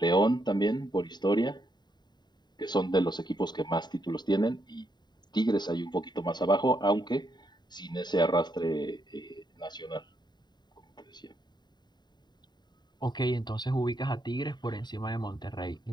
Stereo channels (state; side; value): late; right; 0.21 ms